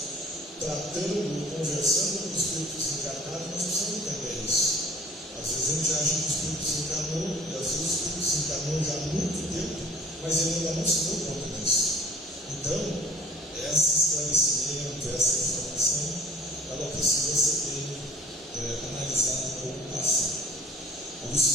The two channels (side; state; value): both; normal; correlation 0.51